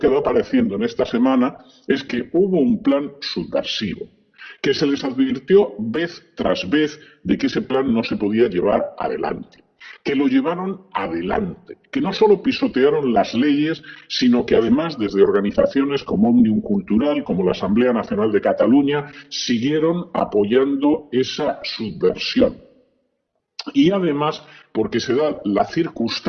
va apareciendo en esta semana es que hubo un plan subversivo, que se les advirtió vez tras vez de que ese plan no se podía llevar adelante, que lo llevaron adelante, que no solo pisotearon las leyes, sino que además desde organizaciones como Òmnium Cultural, como la Asamblea Nacional de Cataluña, siguieron apoyando esa subversión. Y además porque se da la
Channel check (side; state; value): both; identical; correlation 1.00